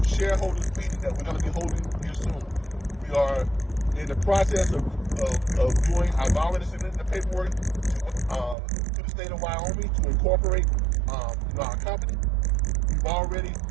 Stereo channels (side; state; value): left; drops out; at 8.6 s